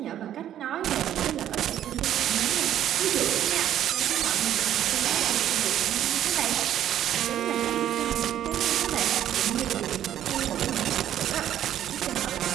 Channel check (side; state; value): left; quieter; 11.2 dB